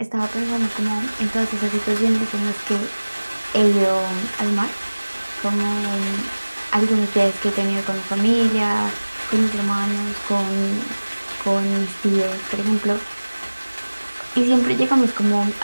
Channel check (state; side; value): inverted; both; correlation -1.00